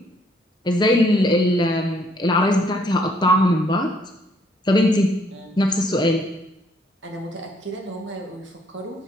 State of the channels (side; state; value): both; normal; correlation 0.66